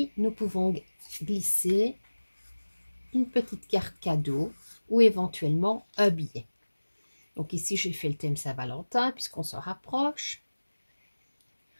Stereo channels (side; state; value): both; inverted; correlation -1.00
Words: nous pouvons glisser une petite carte cadeau ou éventuellement un billet. Donc ici, j'ai fait le thème Saint-Valentin puisqu'on s'en rapproche.